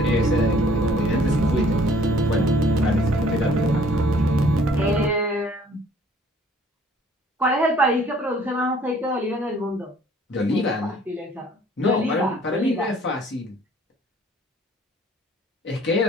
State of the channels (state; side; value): normal; both; correlation 0.57